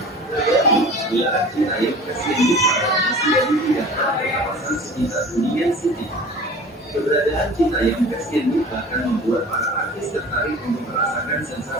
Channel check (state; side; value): normal; both; correlation 0.41